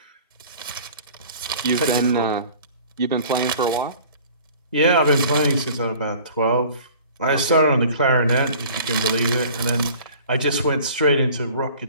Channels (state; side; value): inverted; both; correlation -0.47